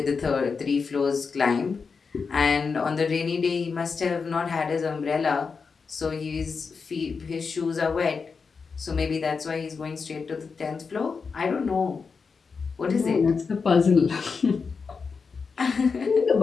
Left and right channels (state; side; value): quieter; right; 5.2 dB